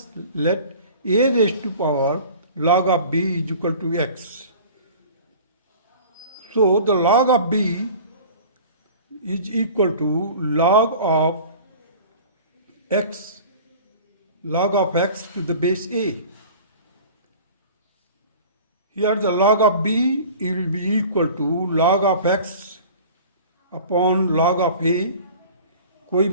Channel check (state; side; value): inverted; both; correlation -0.42